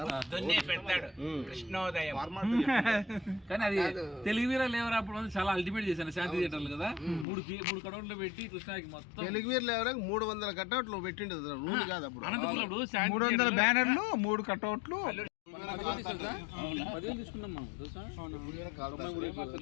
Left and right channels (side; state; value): right; drops out; at 7.2 s